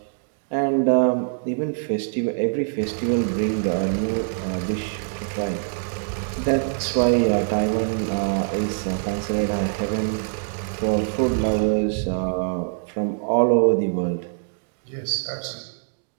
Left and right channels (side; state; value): left; silent; 63 dB below the other